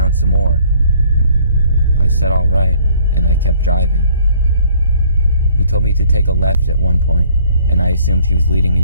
some more. I said all right, and I kept driving. He told me to take a left at one point, and I assumed he was leading me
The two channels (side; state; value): both; inverted; correlation -0.59